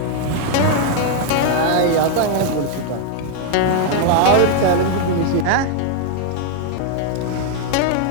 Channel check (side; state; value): both; different; correlation 0.00